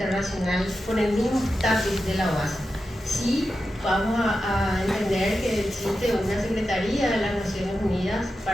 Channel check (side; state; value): both; normal; correlation 0.90